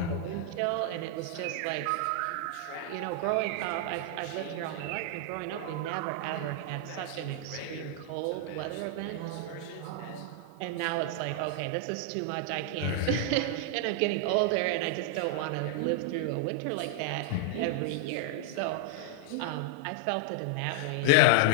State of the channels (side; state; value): both; different; correlation 0.00